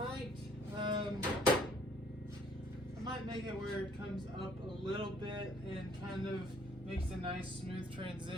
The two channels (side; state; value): both; normal; correlation 0.61